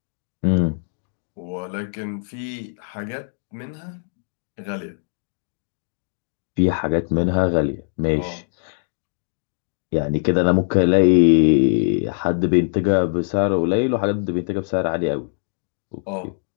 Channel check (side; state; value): right; silent; digital silence